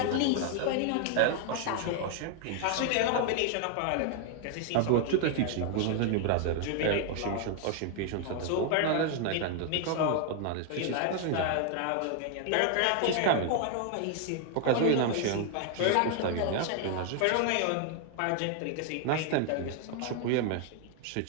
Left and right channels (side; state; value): both; different; correlation 0.00